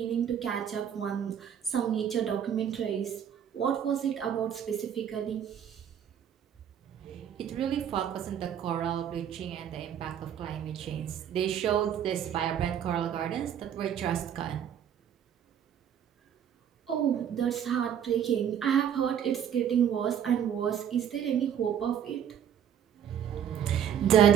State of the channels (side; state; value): left; quieter; 9.1 dB